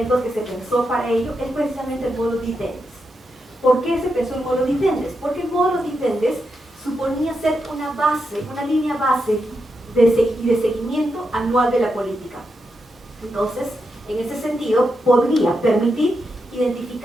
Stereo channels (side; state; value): both; normal; correlation 0.85